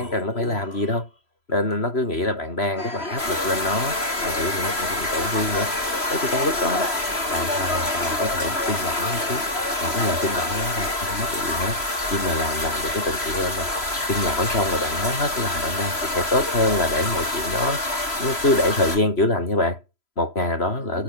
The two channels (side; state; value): right; late; 3.0 ms